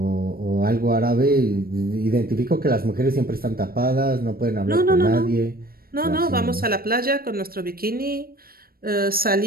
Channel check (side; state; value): left; late; 0.43 ms